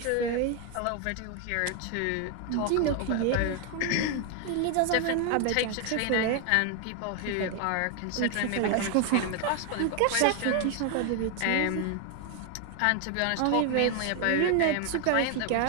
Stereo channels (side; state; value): both; different; correlation 0.01